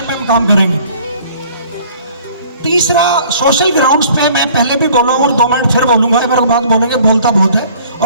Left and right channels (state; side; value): inverted; both; correlation -0.53